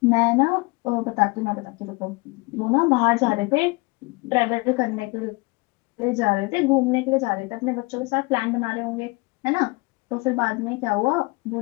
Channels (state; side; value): quieter; right; 25.6 dB